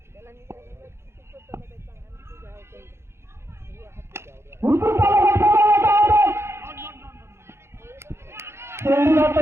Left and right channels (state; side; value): late; left; 0.12 ms